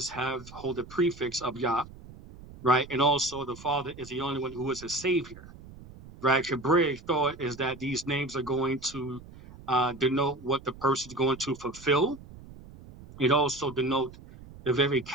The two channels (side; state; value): right; noise; rumble, 18 dB below the sound